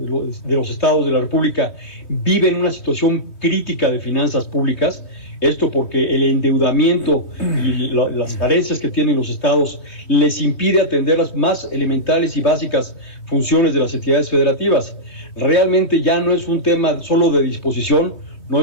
los estados de la República viven una situación crítica de finanzas públicas, esto porque el endeudamiento y las carencias que tienen los estados les impide atender las más elementales y básicas funciones de las entidades federativas. Realmente ya no es un tema solo de disposición, no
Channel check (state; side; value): late; right; 3.1 ms